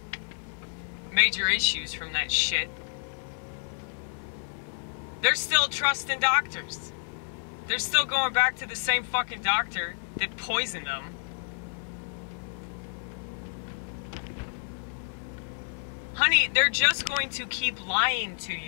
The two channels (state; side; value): silent; right; 58 dB below the other